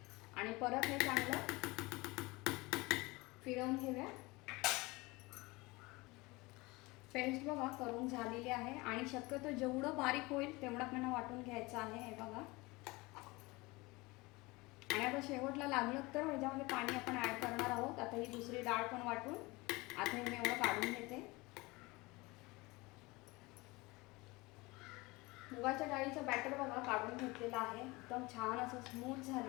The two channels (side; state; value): right; quieter; 23.3 dB